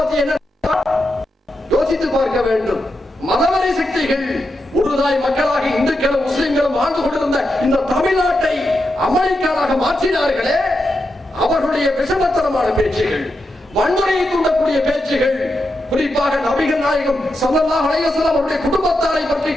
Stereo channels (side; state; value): both; normal; correlation 0.86